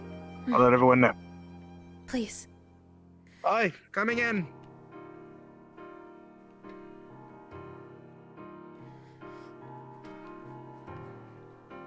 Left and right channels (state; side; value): identical; both; correlation 1.00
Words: I'll let everyone know. Please. Aye, coming in.